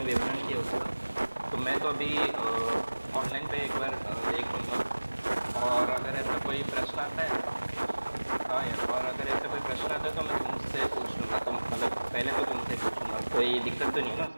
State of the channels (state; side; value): inverted; both; correlation -1.00